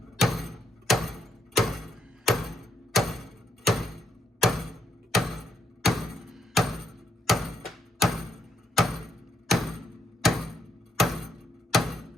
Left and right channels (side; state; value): both; normal; correlation 0.76